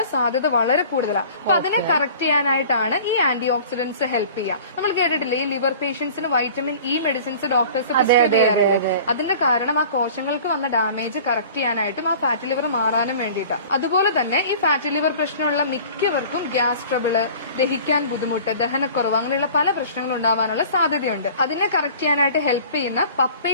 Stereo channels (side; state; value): both; inverted; correlation -0.44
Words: സാധ്യത വളരെ കൂടുതലാണ്. അപ്പൊ അതിനെ കറക്റ്റ് ചെയ്യാനായിട്ടാണ് ഈ ആന്റി ഓക്സിഡന്റ്സ് ഹെൽപ്പ് ചെയ്യുക. നമ്മൾ കേട്ടിട്ടില്ലേ ഈ ലിവർ പേഷ്യൻസിന് vitamin E medicines doctors prescribe ചെയ്യാറുണ്ട്. അതിന്റെ കാരണം ആ കോശങ്ങൾക്ക് വന്ന ഡാമേജ് കറക്റ്റ് ചെയ്യാനായിട്ടും ആ ഫാറ്റി ലിവർ മാറാനും വേണ്ടിയിട്ടാണ്. അതുപോലെ തന്നെ ഈ ഫാറ്റി ലിവർ പ്രശ്നമുള്ള മിക്കവർക്കും ഗ്യാസ് ട്രബിള്, ദഹിക്കാൻ ബുദ്ധിമുട്ട്, ദഹനക്കുറവ് അങ്ങനെയുള്ള പല പ്രശ്നങ്ങളും ഉണ്ടാവാനുള്ള സാധ്യതയുണ്ട്. അതിനെ കറക്റ്റ് ചെയ്യാനായിട്ട് ഹെൽപ്പ് ചെയ്യുന്ന